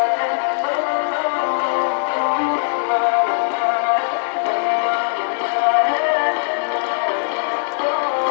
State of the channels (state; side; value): silent; right; digital silence